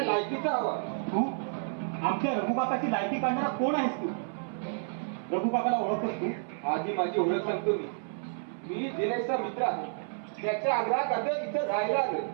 हवा. तू आमच्या रघुकाकाची लायकी काढणारा कोण आहेस तू? रघुकाकाला ओळखतोस तू? आधी माझी ओळख सांगतो मी. मी दिनेशचा मित्र आहे. त्याच्या आग्रहाखातर इथं राहायला आलोय.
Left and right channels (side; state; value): left; silent; 58 dB below the other